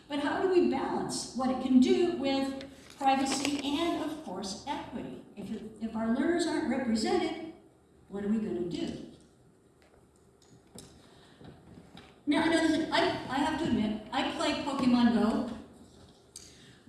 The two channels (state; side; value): identical; both; correlation 1.00